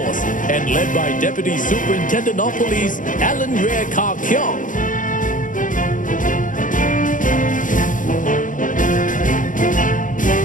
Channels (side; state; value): right; late; 0.38 ms